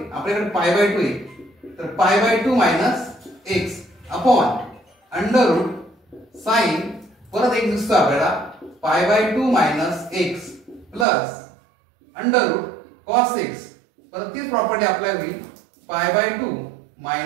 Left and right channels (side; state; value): left; drops out; at 11.1 s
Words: आपल्याकडे pi by 2 आहे, तर pi by 2 minus x upon under root sine परत एक दिसतो आपल्याला pi by 2 minus x plus under root cos x. परत तीच प्रॉपर्टी अप्लाय होईल pi by 2